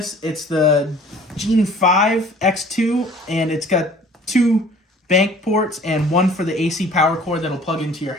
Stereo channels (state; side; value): normal; both; correlation 0.50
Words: It's the Gene 5 X2, and it's got 2 bank ports and 1 for the AC power cord that'll plug into your